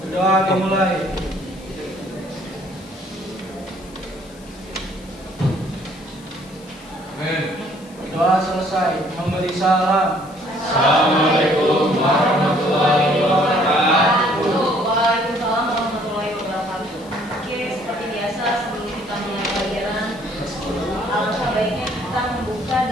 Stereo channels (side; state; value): left; noise; hiss, 24 dB below the sound